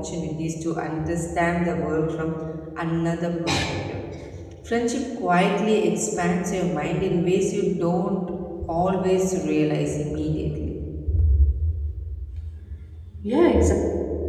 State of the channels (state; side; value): identical; both; correlation 1.00